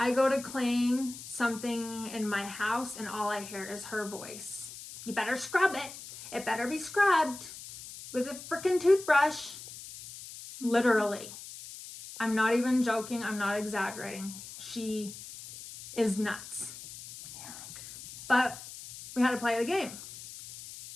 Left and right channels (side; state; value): left; noise; hiss, 13 dB below the sound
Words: go to clean something in my house and all I hear is her voice. You better scrub it. It better be scrubbed with a freaking toothbrush. Literally. I'm not even joking. I'm not exaggerating. She is nuts. Yeah. But we had to play the game